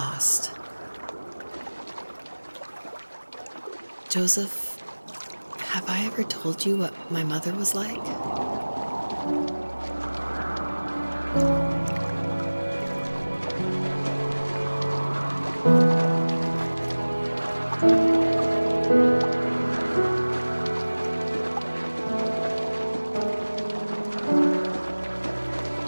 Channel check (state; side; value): inverted; both; correlation -1.00